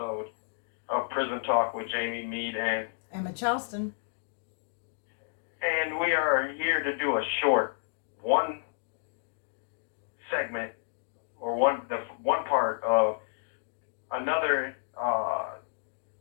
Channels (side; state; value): right; silent; digital silence